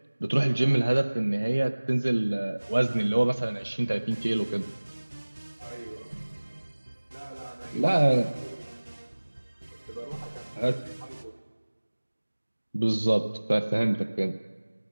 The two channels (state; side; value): inverted; both; correlation -1.00